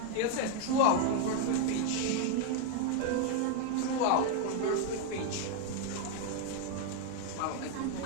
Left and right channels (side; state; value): both; different; correlation 0.01